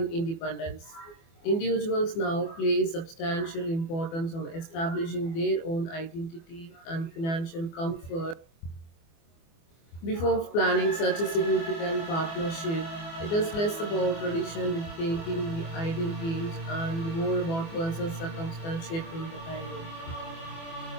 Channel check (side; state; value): right; late; 24 ms